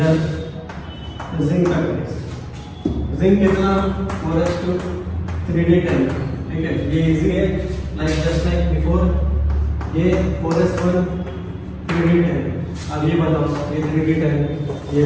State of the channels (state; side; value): identical; both; correlation 1.00